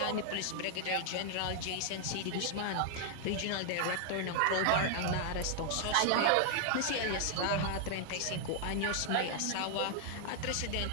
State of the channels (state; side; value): different; both; correlation 0.00